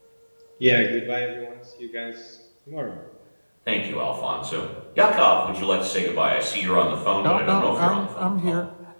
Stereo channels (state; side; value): inverted; both; correlation -1.00